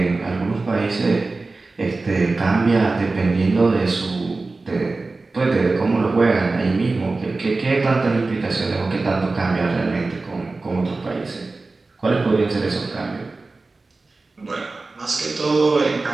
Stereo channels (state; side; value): quieter; left; 3.5 dB